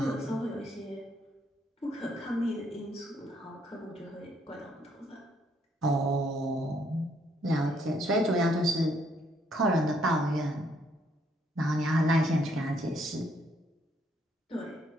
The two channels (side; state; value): both; normal; correlation 0.70